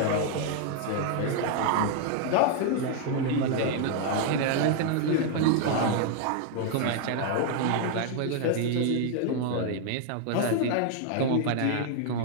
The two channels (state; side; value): different; both; correlation 0.00